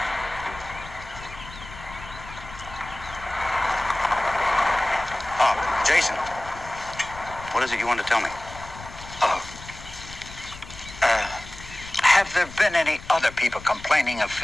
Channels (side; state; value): left; noise; rumble, 15 dB below the sound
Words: Oh, Jason. What is it you want to tell me? Have there been any other people complaining of